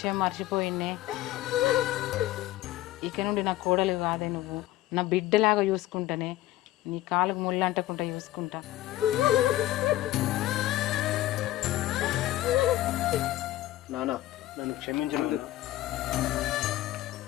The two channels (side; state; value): right; quieter; 15.5 dB